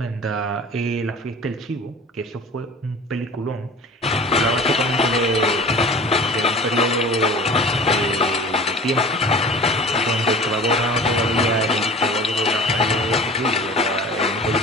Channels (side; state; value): both; normal; correlation 0.41